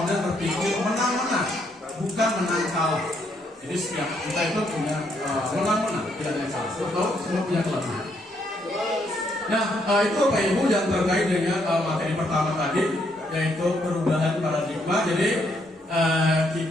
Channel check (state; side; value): normal; both; correlation 0.73